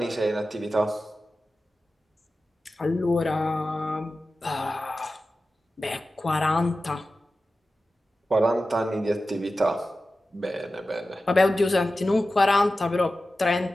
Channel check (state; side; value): normal; both; correlation 0.94